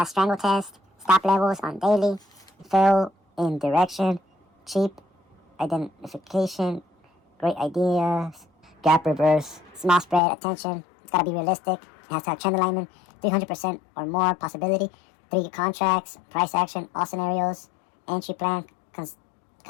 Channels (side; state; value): right; drops out; at 10.2 s